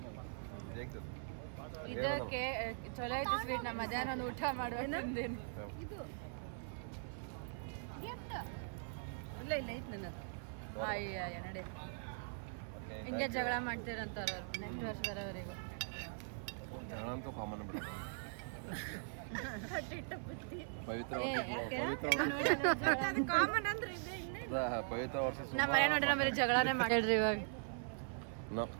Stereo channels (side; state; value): left; silent; 50 dB below the other